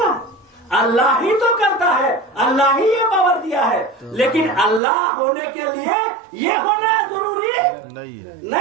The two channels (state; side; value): drops out; left; at 4.8 s